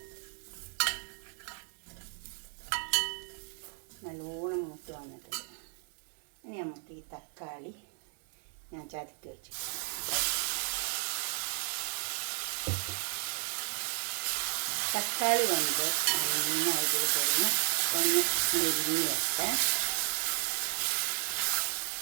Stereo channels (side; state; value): left; silent; 55 dB below the other